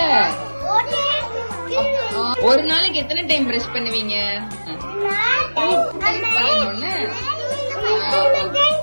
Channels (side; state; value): both; inverted; correlation -1.00